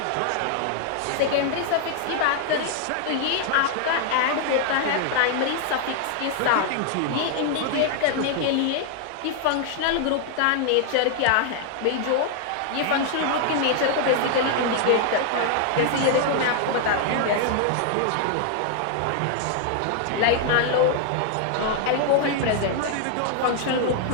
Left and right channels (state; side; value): different; both; correlation 0.00